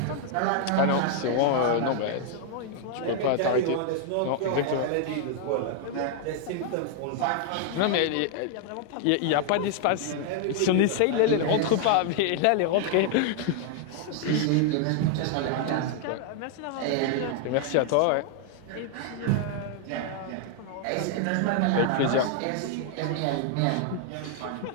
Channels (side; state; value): both; different; correlation 0.00